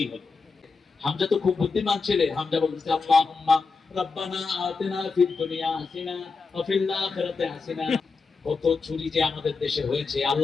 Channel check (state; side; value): quieter; right; 4.6 dB